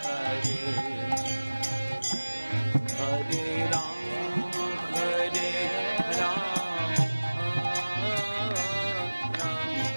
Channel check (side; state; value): both; inverted; correlation -1.00